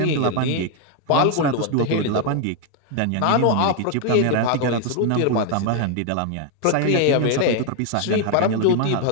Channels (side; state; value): both; different; correlation 0.01